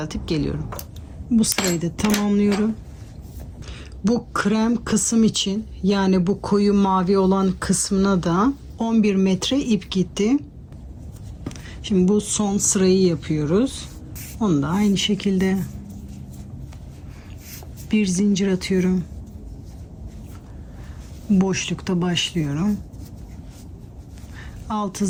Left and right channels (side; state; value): both; identical; correlation 1.00